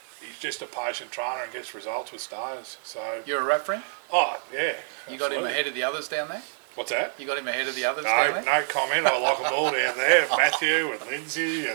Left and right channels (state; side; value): silent; left; 57 dB below the other